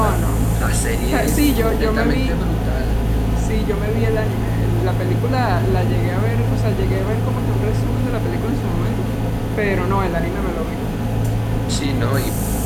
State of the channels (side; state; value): both; identical; correlation 1.00